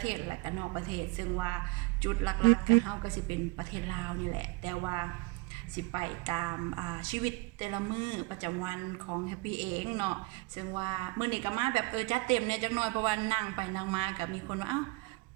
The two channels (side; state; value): left; quieter; 22.8 dB